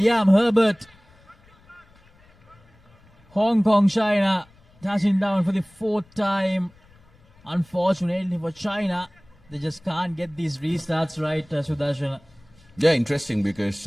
Herbert. Hong Kong, China touching down for the 4th time. Unfortunately for China, they just can't get these restarts right, Sudarshan. Yeah, interesting, because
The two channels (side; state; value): left; noise; rumble, 29 dB below the sound